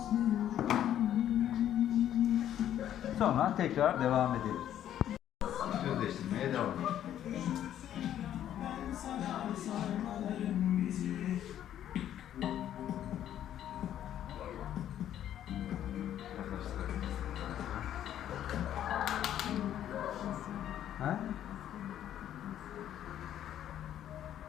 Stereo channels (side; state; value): right; quieter; 11.1 dB